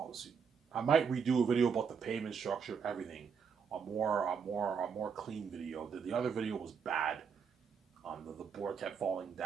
I might redo a video about the payment structure, everything. A more clean video. The other video was bad. The board kept falling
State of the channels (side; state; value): left; quieter; 6.3 dB